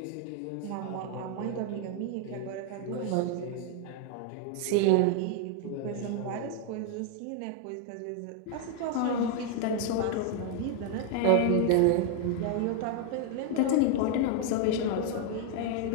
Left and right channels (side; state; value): both; different; correlation 0.00